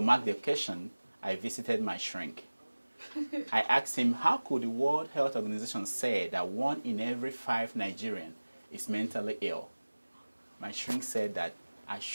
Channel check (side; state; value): both; inverted; correlation -1.00